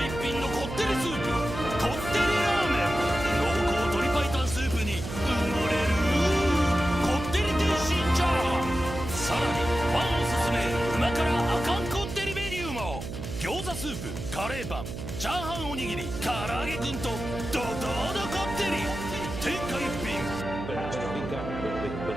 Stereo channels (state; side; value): noise; right; hum, 8 dB below the sound